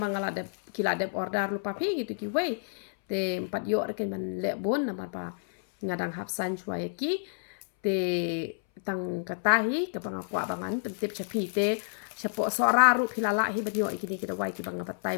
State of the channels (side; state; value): right; silent; 58 dB below the other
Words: de kila de order lu pa phi gitu ki we te 4 yo ken ban le bon na mar ba ngadang hap san chwai ki te tang katahi ka banga kwa bangan pentip chapi te chapo sora ru philala hi banyo ikini kita wai ki banga patai